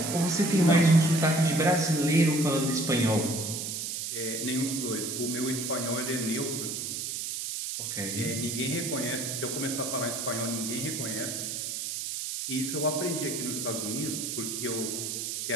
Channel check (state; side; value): noise; right; hiss, 4 dB below the sound